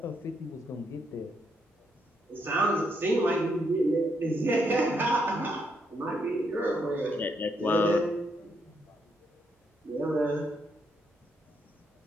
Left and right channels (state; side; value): normal; both; correlation 0.77